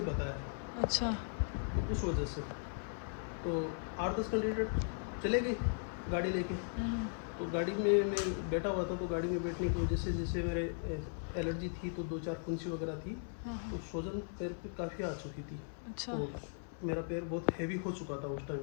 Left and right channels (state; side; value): silent; right; 53 dB below the other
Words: बताया। अच्छा। तो उस वजह से तो 8-10 कैंडिडेट चले गए गाड़ी लेके। तो गाड़ी में मैं बैठा हुआ था, तो गाड़ी में बैठने की वजह से जैसे मेरे एलर्जी थी, तो 2-4 फुंसी वगैरह थी, तो सूजन पैर पे काफ़ी आ चुकी थी। अच्छा। तो मेरा पैर बहुत हैवी हो चुका था उस टाइम